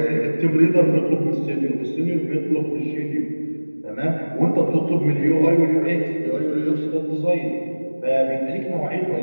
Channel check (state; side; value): inverted; both; correlation -1.00